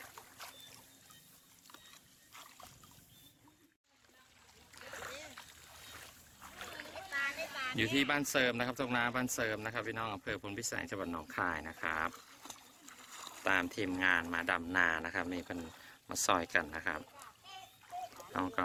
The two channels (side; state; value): both; identical; correlation 1.00